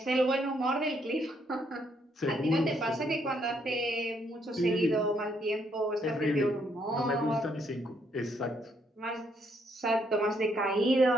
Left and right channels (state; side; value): normal; both; correlation 0.72